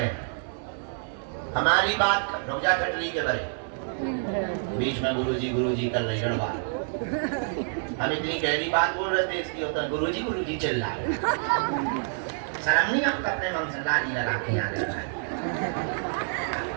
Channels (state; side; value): silent; left; digital silence